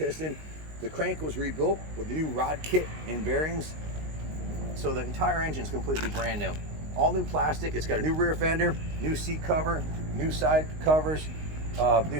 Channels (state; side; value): late; left; 19 ms